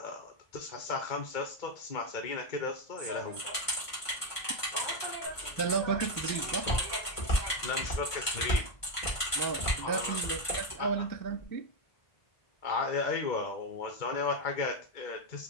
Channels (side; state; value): right; late; 1.5 ms